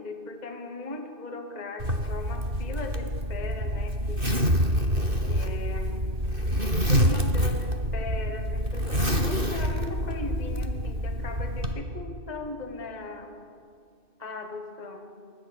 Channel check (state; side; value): late; left; 2.6 ms